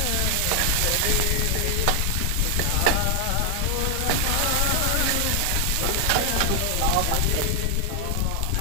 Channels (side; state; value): both; different; correlation 0.00